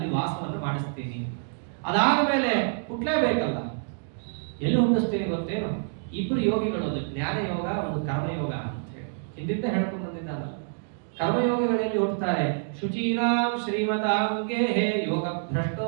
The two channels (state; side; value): silent; left; digital silence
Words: ವಾಸವನ್ನು ಮಾಡಿಸ್ತೀನಿ. ಅದಾದ ಮೇಲೆ ಹುಟ್ಟಲೇಬೇಕಲ್ಲ. ಎಲ್ಲಿ ಹುಟ್ಟಿಸ್ತೀನಿ ಗೊತ್ತೇನು? ಇಬ್ರು ಯೋಗಿಗಳು, ಒಂದು ಜ್ಞಾನ ಯೋಗ, ಒಂದು ಕರ್ಮಯೋಗ ಅಂತ ಹೇಳಿ ಹಿಂದಿಂದ ಹೇಳ್ಕೊಂಡು ಬಂದಿದ್ದಾನಲ್ಲ. ಕರ್ಮಯೋಗಿಗಳಲ್ಲಿ ಹುಟ್ಟುತ್ತಾರೆ. ಶುಚೀನಾಂ ಶ್ರೀಮತಾಂ ಗೇಹೇ ಯೋಗ